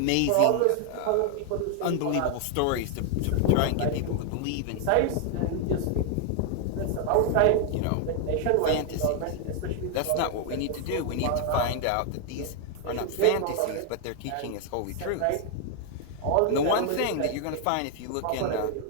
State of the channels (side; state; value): both; different; correlation 0.00